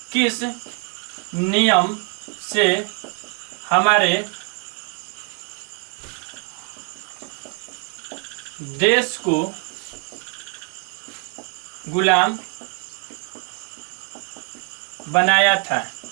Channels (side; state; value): left; quieter; 33.9 dB